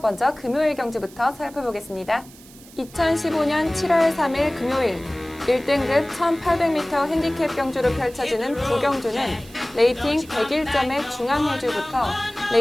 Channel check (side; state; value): right; noise; hiss, 22 dB below the sound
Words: 먼저 금요일 경주부터 살펴보겠습니다. 2015년 7월 3일 금요일 1등급 1800m 핸디캡 경주로 펼쳐지는 9경주는 레이팅 101점의 중앙해주부터